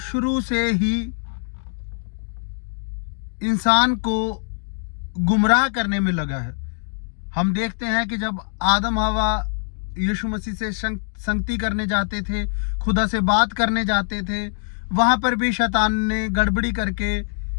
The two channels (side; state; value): right; silent; digital silence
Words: से ही इंसान को गुमराह करने में लगा है। हम देखते हैं कि जब आदम हवा यीशु मसीह से संगति करने जाते थे, खुदा से बात करने जाते थे, वहां पर भी शैतान ने गड़बड़ी करके